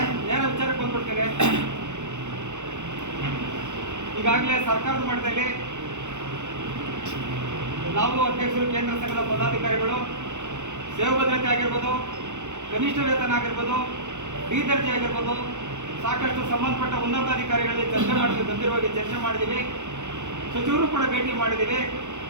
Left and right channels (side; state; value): left; late; 0.84 ms